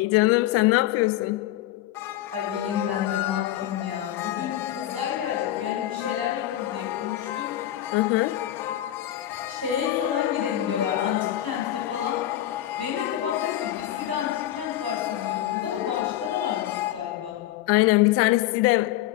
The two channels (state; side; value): quieter; right; 13.5 dB